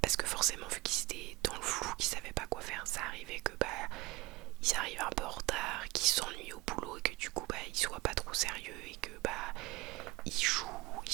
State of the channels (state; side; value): quieter; left; 21.5 dB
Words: parce que forcément vu qu'ils étaient dans le flou, qu'ils savaient pas quoi faire, ça arrivait que ils arrivent un peu en retard, qu'ils s'ennuient au boulot, et que du coup ils soient pas trop sérieux, et que ils jouent, ils